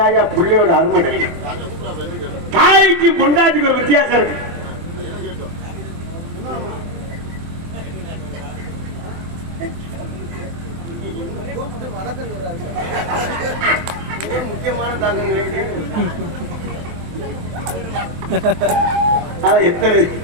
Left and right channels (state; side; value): late; left; 23 ms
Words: பிள்ளையோட அருமை தெரியும். தாய்க்கு பொண்டாட்டிக்கு ஒரு வித்தியாசம் இருக்கு. முக்கியமான எத்தனை